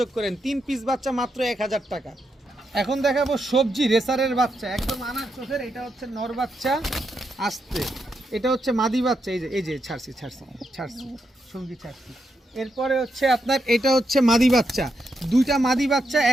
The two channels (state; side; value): normal; both; correlation 0.83